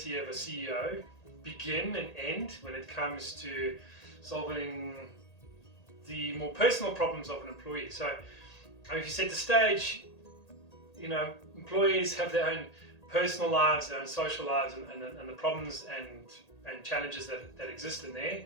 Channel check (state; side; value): late; right; 1.8 ms